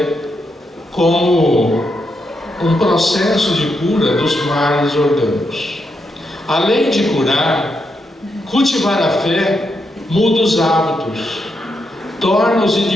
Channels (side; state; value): both; normal; correlation 0.82